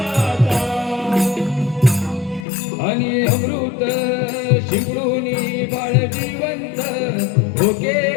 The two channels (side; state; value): right; drops out; at 2.5 s